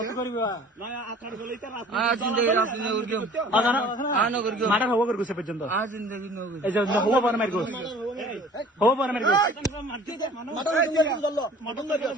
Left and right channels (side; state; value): both; normal; correlation 0.48